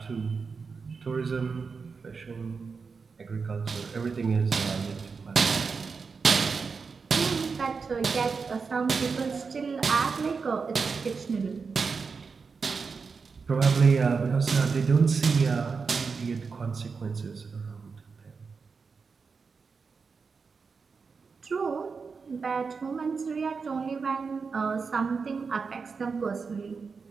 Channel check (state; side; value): quieter; left; 5.1 dB